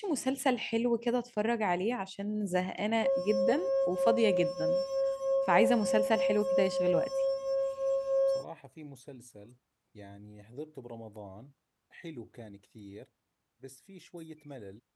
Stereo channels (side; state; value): both; identical; correlation 1.00